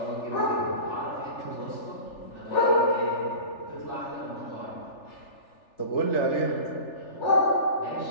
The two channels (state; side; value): late; right; 3.4 ms